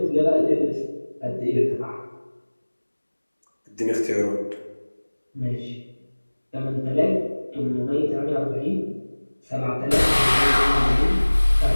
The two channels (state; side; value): inverted; both; correlation -1.00